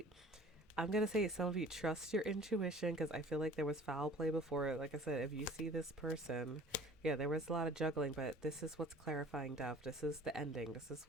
I'm going to say some of you trust your intuition, because I feel like there was foul play before. Like I said, if you see this person, yeah, there was a lot of juggling, but this is what's clarifying death. This is the ending. This is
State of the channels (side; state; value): both; normal; correlation 0.48